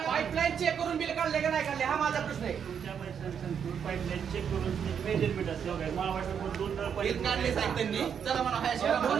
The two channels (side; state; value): left; quieter; 7.7 dB